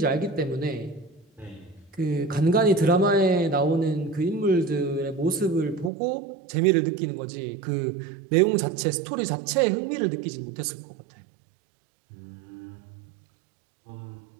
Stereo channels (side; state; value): left; drops out; at 5.9 s